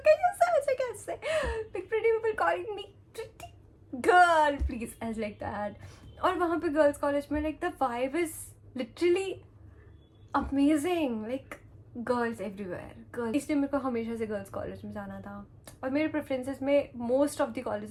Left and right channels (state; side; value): identical; both; correlation 1.00